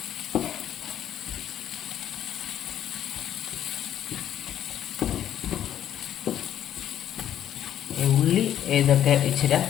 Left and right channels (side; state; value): right; quieter; 10.7 dB